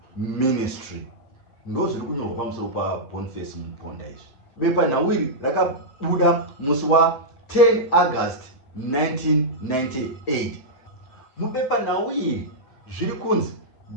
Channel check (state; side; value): late; right; 8.2 ms